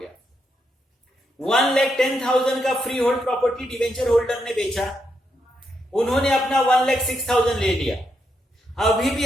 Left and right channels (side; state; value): both; normal; correlation 0.81